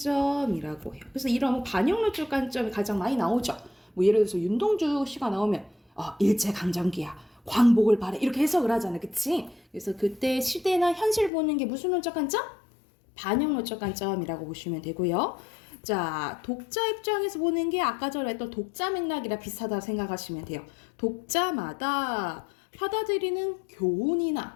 해요. 그래서 이런 반영론적 관점이 가장 많이 나오죠. 뭐 예를 들어서 윤동주 씨가 나오면 일제강점기야, 광복을 바래, 이렇게 해석을 하잖아, 그치? 그래서 그때 시대나 현실 보는 게 무슨 논적 관점? 반영론적 관점이라고 보시면 되고요. 자, 독자 입장에서 보는 게 아까 전에 했던 독자 맥락이랑 비슷하다고 생각하시면 돼요. 독자마다 받아들이는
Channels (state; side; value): drops out; right; at 11.3 s